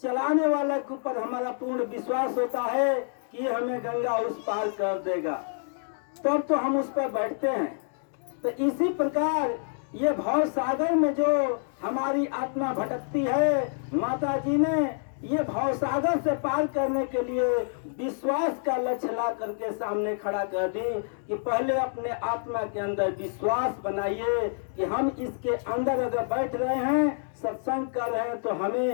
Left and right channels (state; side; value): silent; right; digital silence